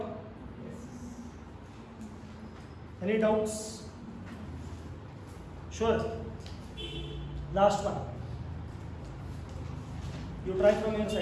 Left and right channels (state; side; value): identical; both; correlation 1.00